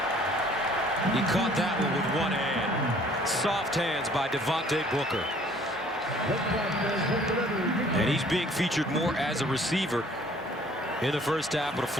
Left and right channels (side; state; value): both; normal; correlation 0.56